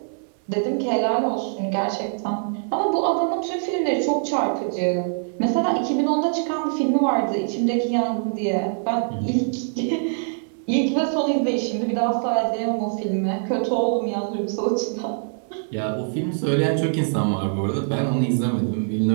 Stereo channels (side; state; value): left; silent; digital silence